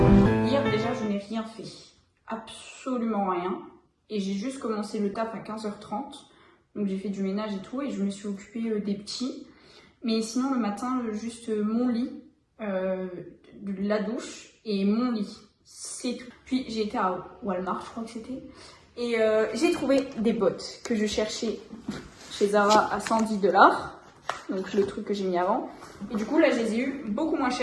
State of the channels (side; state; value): both; identical; correlation 1.00